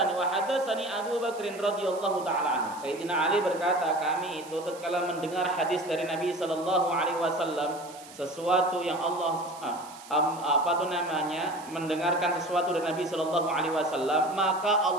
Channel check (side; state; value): right; noise; hiss, 19 dB below the sound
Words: wa hadatsani Abu Bakr radhiyallahu taala anhu. Sayyidina Ali berkata, kami itu tatkala mendengar hadis dari Nabi sallallahu alaihi wasallam, sesuatu yang Allah mendengarkan sesuatu dari Nabi sallallahu alaihi wasallam, maka